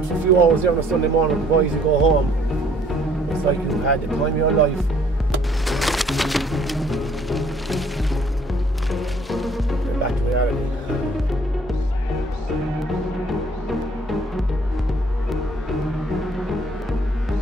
for a few hours there on a Sunday morning, the boys, you go home. It's like you've had the time of your life. Get back to reality.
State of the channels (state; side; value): normal; both; correlation 0.60